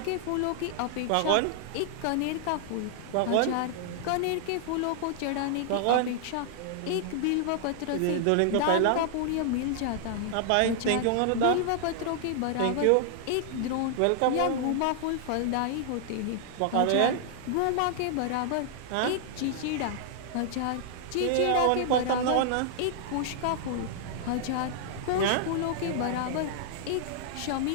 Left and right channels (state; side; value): different; both; correlation -0.01